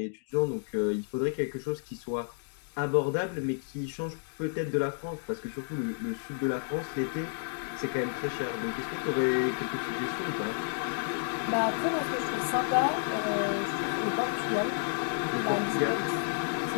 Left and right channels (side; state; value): right; silent; digital silence